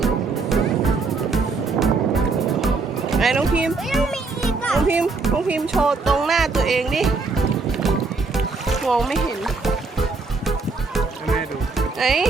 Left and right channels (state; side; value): quieter; left; 4.0 dB